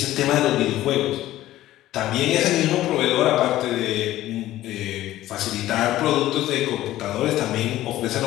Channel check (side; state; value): right; quieter; 14.7 dB